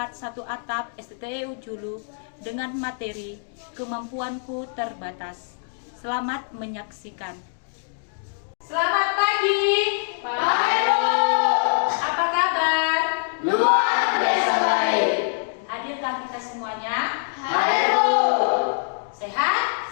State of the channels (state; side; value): silent; right; digital silence